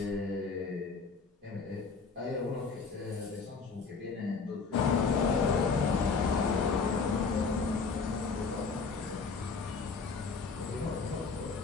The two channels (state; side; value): quieter; right; 4.8 dB